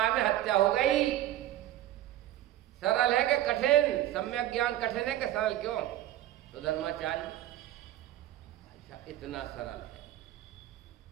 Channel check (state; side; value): quieter; left; 13.6 dB